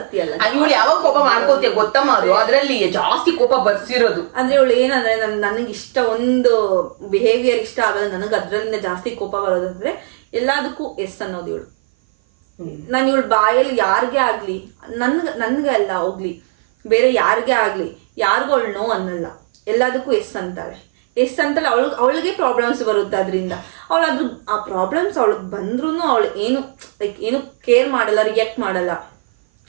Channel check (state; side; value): silent; left; 57 dB below the other